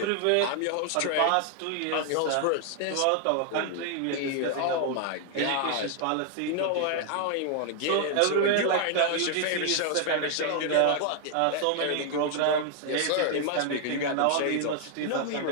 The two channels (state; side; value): different; both; correlation 0.00